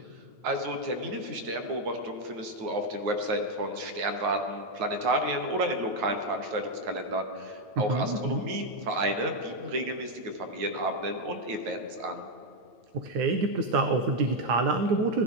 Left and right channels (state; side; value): late; left; 8.9 ms